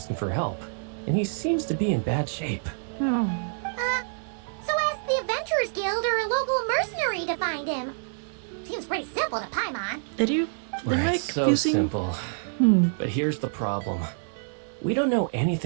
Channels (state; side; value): silent; left; digital silence